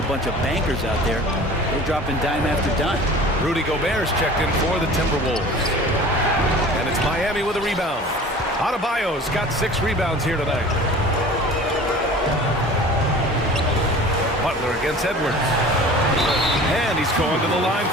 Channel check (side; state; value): both; normal; correlation 0.42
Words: a bunch of bankers out there. They're dropping dime after dime. Rudy Gobert's checked in for the Timberwolves. And it's Miami with a rebound. Adebayo's got 6 rebounds here tonight. Butler against Edwards. And he's going to the line